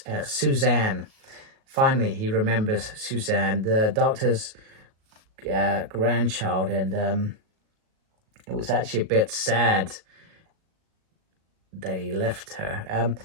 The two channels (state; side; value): late; left; 37 ms